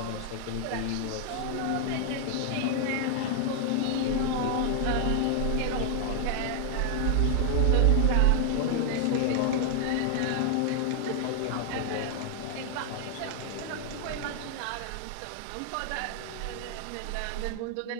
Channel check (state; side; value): different; both; correlation 0.00